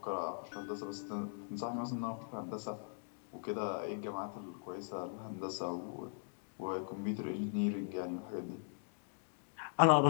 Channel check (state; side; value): silent; right; digital silence